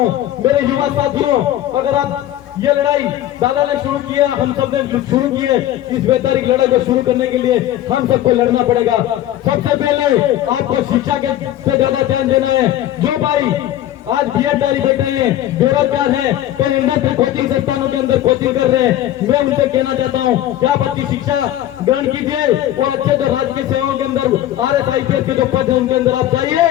मेरे युवा साथियों, अगर आप ये लड़ाई दादा ने शुरू किया, हम सब ने शुरू किए, इस वैचारिक लड़ाई को शुरू करने के लिए हम सबको लड़ना पड़ेगा। सबसे पहले आपको शिक्षा के पे ज्यादा ध्यान देना है। जो भाई आज बीएडधारी बैठे हैं, बेरोजगार हैं, कई इंडस्ट्री कोचिंग संस्थानों के अंदर कोचिंग कर रहे हैं, मैं उनसे कहना चाहता हूँ कि आप अच्छी शिक्षा ग्रहण कीजिए और अच्छे जो राजकीय सेवाओं के अंदर RS-IPS के जो पद है उनके अंदर आप जाइए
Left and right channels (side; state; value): right; quieter; 13.0 dB